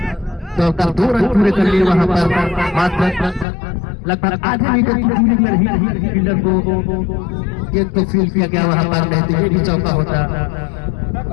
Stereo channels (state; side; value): drops out; right; at 3.5 s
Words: दौड़कर 2 रन पूरे कर लिए वहां पर। मात्र लगभग आधे मीटर की दूरी में ही फील्डर को गेंद को फील्ड किया गया वहां पर, नहीं तो ये भी चौका होता।